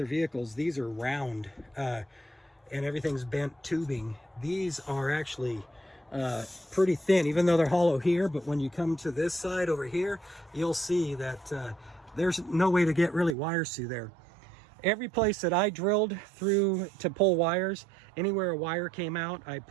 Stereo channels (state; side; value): drops out; left; at 13.4 s